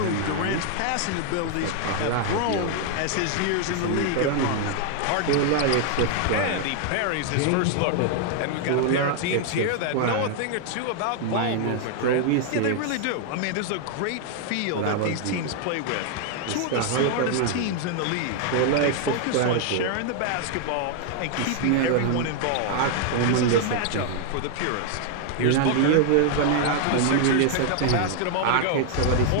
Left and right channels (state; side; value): different; both; correlation 0.00